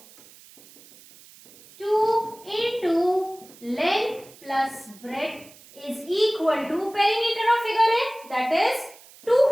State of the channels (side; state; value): right; noise; hiss, 23 dB below the sound